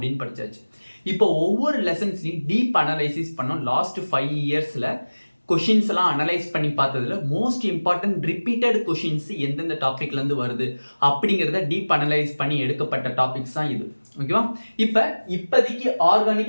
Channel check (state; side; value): inverted; both; correlation -1.00